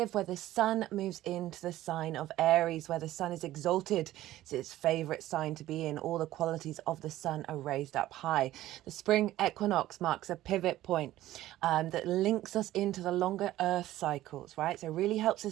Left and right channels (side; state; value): left; quieter; 14.8 dB